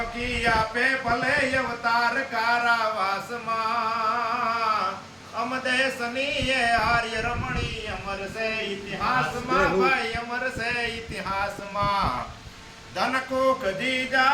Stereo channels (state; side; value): identical; both; correlation 1.00